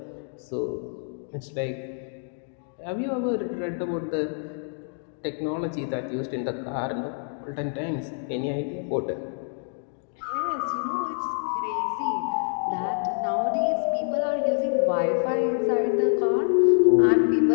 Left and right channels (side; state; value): right; silent; 61 dB below the other